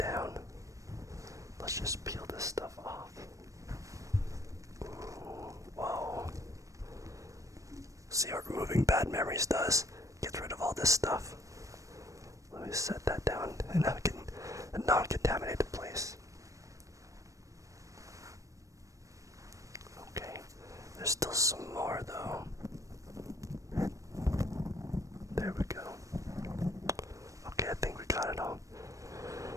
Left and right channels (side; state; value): left; late; 0.16 ms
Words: Let's just peel this stuff off. Ooh, whoa. See what removing bad memories does? Gets rid of all this stuff. Let me set that down in a non-contaminated place. Okay, there's still some more though. There we go. Okay, I think we got it all.